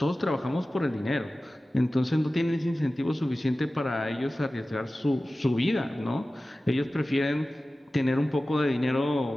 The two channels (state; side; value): normal; both; correlation 0.96